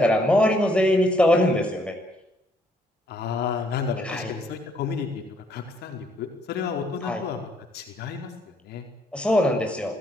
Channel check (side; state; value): both; normal; correlation 0.69